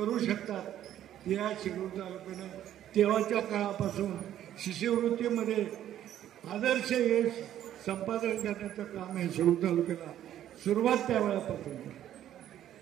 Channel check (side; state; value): left; quieter; 11.6 dB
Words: शकतात. या शिरूर तालुक्यानं तेव्हाच्या काळापासून शिष्यवृत्तीमध्ये आदर्श यश संपादन करण्याचं काम आहे शिरूर तालुक्याला सुरुवात त्यावेळेपासून.